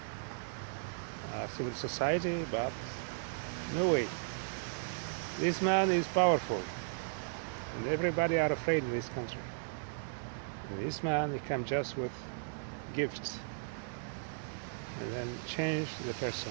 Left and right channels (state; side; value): silent; left; digital silence